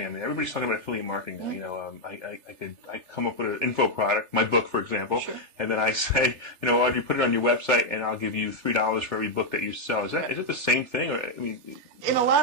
I mean, everybody's talking about affiliate marketing now. I come up with an info product, my book, for example, Sure. and then I say, Audrey, put it on your website, and I'll give you $3 for every book that you sell. Is it the same thing? Or, In a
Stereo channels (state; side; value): late; left; 3.4 ms